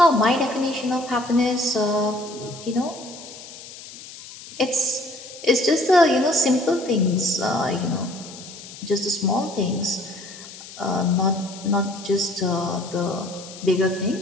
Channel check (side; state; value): left; noise; hiss, 16 dB below the sound